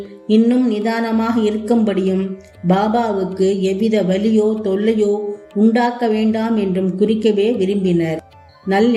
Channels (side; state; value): both; identical; correlation 1.00